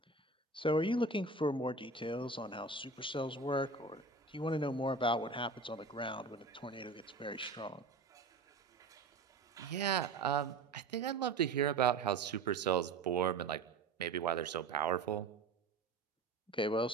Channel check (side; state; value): left; quieter; 3.7 dB